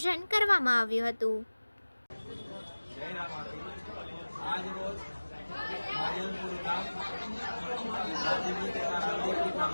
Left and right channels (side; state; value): both; inverted; correlation -1.00